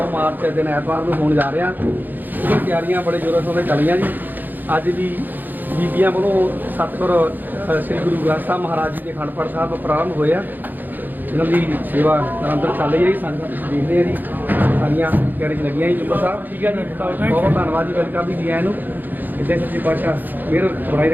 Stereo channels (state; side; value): late; left; 0.087 ms